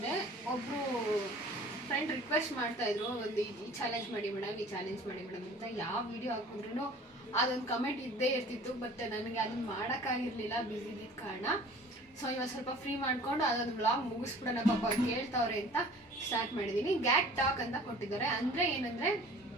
ಒಬ್ಬರು ಫ್ರೆಂಡ್ ರಿಕ್ವೆಸ್ಟ್ ಮಾಡ್ತಾಯಿದ್ರು, ಒಂದು ಈ ಚಾಲೆಂಜ್ ಮಾಡಿ ಮೇಡಮ್, ಈ ಚಾಲೆಂಜ್ ಮಾಡಿ ಮೇಡಮ್ ಅಂತ. ಯಾವ ವಿಡಿಯೋ ಹಾಕಿದ್ರೂ ಅದೊಂದು ಕಮೆಂಟ್ ಇದ್ದೇ ಇರ್ತಿತ್ತು. ಬಟ್ ನನಗೆ ಅದನ್ನು ಮಾಡೋಕ್ಕಾಗಿರಲಿಲ್ಲ, ಬ್ಯುಸಿ ಇದ್ದಿದ್ದ ಕಾರಣ. ಸೊ ಇವಾಗ ಸ್ವಲ್ಪ ಫ್ರೀ ಮಾಡ್ಕೊಂಡು ಅದೊಂದು ವ್ಲಾಗ್ ಮುಗಿಸ್ಬಿಡೋಣ, ಪಾಪ ಕೇಳ್ತಾವ್ರೆ ಅಂತ ಸ್ಟಾರ್ಟ್ ಮಾಡಿದ್ದೀನಿ. ಗ್ಯಾಟ್ ಟಾಕ್ ಅಂತ ಕೊಟ್ಟಿದ್ದಾರೆ. ಅಂದರೆ ಏನಂದರೆ,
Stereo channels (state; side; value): normal; both; correlation 0.47